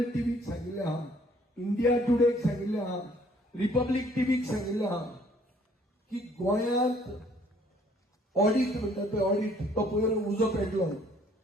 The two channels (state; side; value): normal; both; correlation 0.60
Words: टीव्हीक सांगिल्लें आहा इंडिया टुडेक सांगिल्लें आहा रिपब्लीक टीव्हीक सांगिल्लें आहा की गोंयांत ऑडिट म्हणटा पळय ऑडिट तो पयर उजो